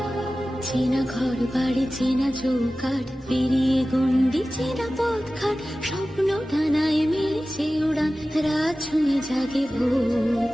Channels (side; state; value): both; normal; correlation 0.96